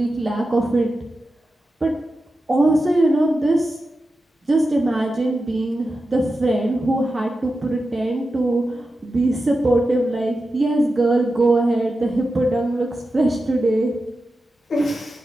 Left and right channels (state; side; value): normal; both; correlation 0.91